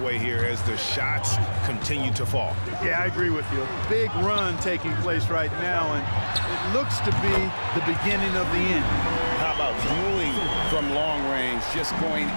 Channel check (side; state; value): both; inverted; correlation -1.00